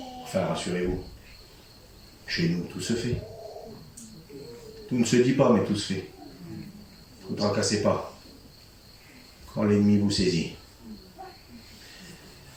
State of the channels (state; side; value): identical; both; correlation 1.00